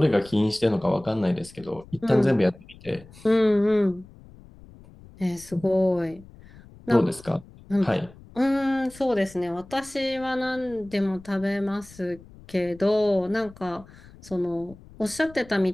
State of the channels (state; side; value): noise; left; rumble, 22 dB below the sound